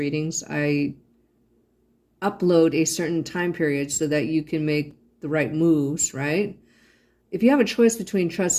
I upload a certain time period so that you can make the right moves, right? If you have a choice between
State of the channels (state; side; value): identical; both; correlation 1.00